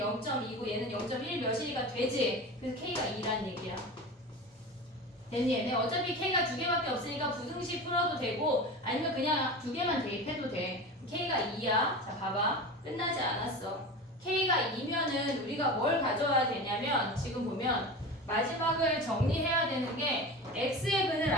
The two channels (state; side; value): normal; both; correlation 0.30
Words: 얘는 0.1 몇이니까 되지. 그래서 K가 2란 얘기야. 됐니 얘네? 어차피 K가 두 개밖에 없으니까 부등식 풀어도 되고 아니면 그냥 두 개만 대입해도 돼. K가 2야. 자 봐봐. 끝나지 않았어. K가 2면은 우리가 뭘 가져와야 되냐면 지금 보면 마지막을 정리해야 되는 게 X의 근을